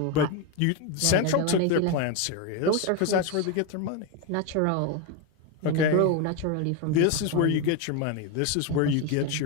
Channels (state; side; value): different; both; correlation 0.02